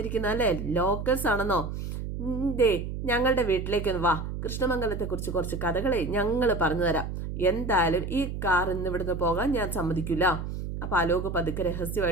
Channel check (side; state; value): right; noise; hum, 5 dB below the sound